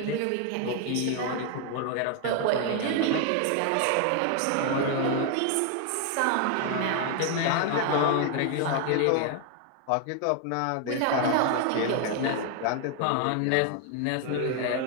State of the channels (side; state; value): both; different; correlation 0.00